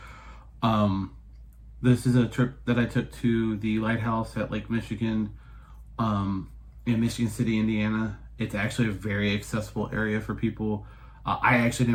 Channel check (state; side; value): identical; both; correlation 1.00